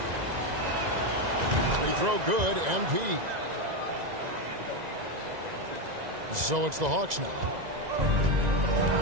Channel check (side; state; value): left; late; 1.9 ms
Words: Free throw good, MP. So it's the Hawks now.